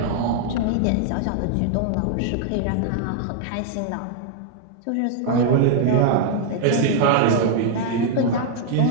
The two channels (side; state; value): both; different; correlation 0.00